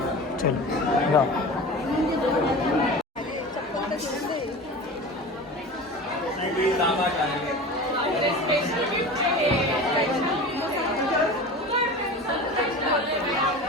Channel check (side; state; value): both; normal; correlation 0.33